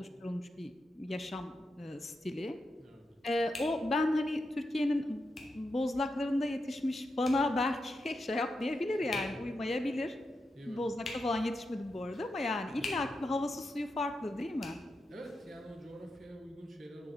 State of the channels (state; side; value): normal; both; correlation 0.87